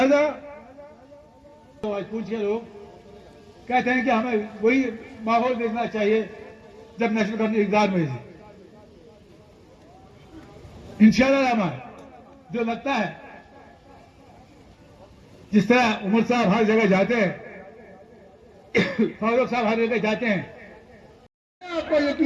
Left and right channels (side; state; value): both; identical; correlation 1.00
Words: तो आज पूछ के लोग कहते हैं कि हमें वही माहौल देखना चाहिए जब नेशनल गवर्नमेंट इक़्तिदार में थी। इंशाल्लाह रहमान जो लगता है जिस तरह उमर साहब हर जगह जाते हैं, फारूक साहब हर जगह जाते हैं, मैं आपको